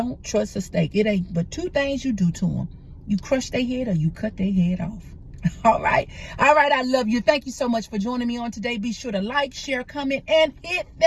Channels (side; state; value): both; identical; correlation 1.00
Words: trust a snake. It ain't but two things you do to them. You crush their head or you cut their head off. All right. All right. I love you. Thank you so much for joining me on today. Be sure to like, share, comment, and hit